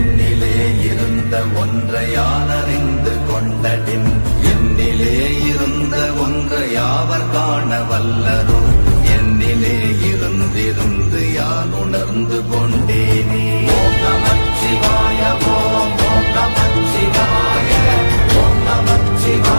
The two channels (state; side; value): inverted; both; correlation -1.00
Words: இருந்த ஒன்றை யான் அறிந்து கொண்டடின், என்னிலே இருந்த ஒன்றை யாவர் காண வல்லரோ, என்னிலே இருந்திருந்து யான் உணர்ந்து கொண்டேனே. ஓம் நமச்சிவாய ஓம் ஓம் நமச்சிவாய ஓம்